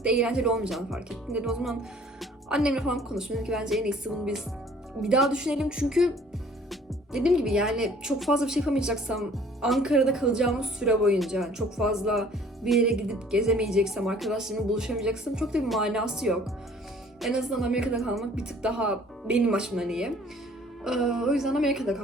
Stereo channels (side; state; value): both; normal; correlation 0.54